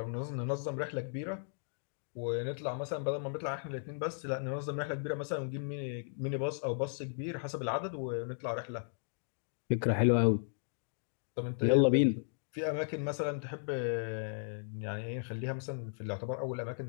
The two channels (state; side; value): silent; right; digital silence